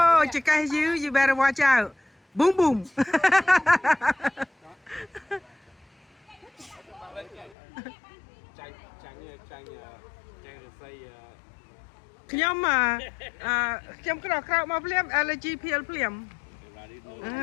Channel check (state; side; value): drops out; right; at 7.6 s